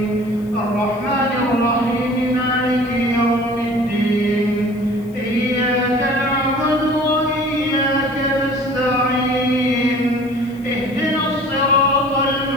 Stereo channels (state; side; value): noise; left; hiss, 28 dB below the sound